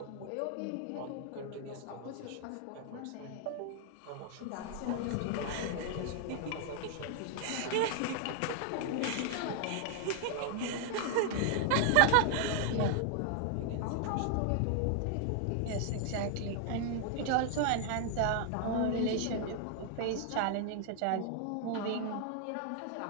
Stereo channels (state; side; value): different; both; correlation 0.00